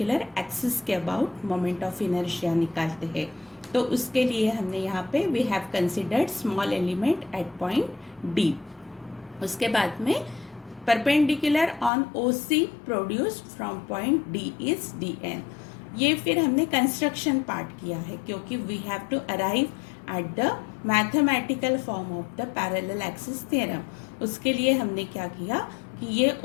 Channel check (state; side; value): drops out; right; at 11.9 s